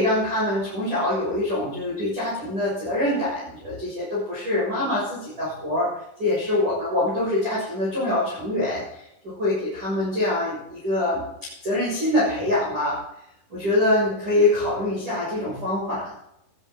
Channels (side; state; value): left; late; 11 ms